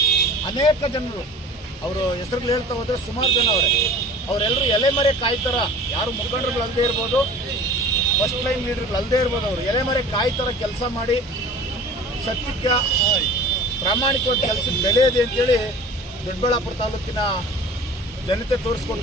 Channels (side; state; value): both; normal; correlation 0.42